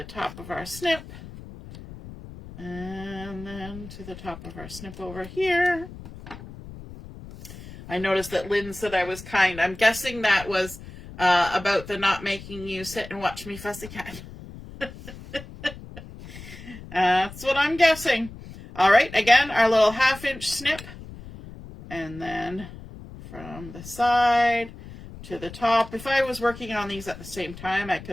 top of our snip. And then to the top of our snip over here. I noticed that Lynn said I was kind. I'm guessing that was about the not making you sit and watch me fussy cat. That's what I'm guessing. All right, again, our little 1/2 inch snip. And then from the side to the top. If I was working on these at the same time, I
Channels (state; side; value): noise; left; rumble, 15 dB below the sound